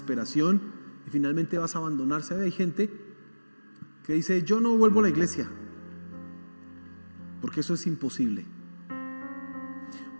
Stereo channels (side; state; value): both; inverted; correlation -1.00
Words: y finalmente vas a abandonarse. Hay gente que dice, yo no vuelvo a la iglesia porque eso es imposible.